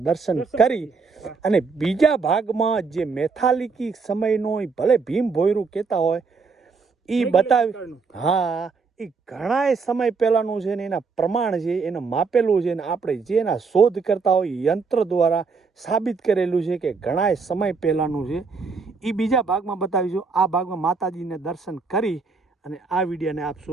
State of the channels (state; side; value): quieter; left; 4.7 dB